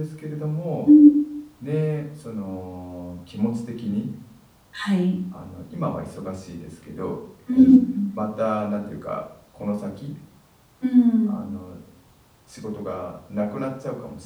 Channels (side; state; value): both; identical; correlation 1.00